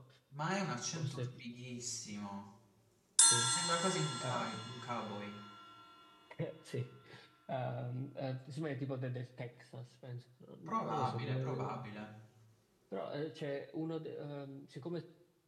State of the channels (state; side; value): identical; both; correlation 1.00